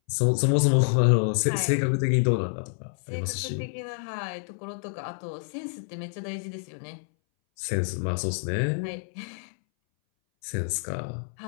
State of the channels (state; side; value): silent; right; 60 dB below the other